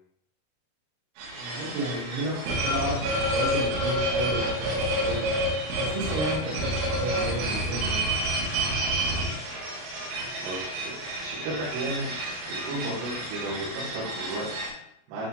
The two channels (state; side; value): late; left; 32 ms